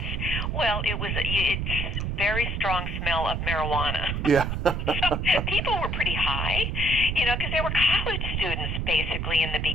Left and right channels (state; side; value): noise; right; rumble, 1 dB below the sound